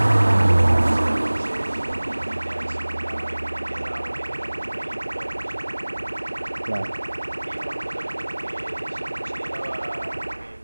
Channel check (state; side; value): inverted; both; correlation -1.00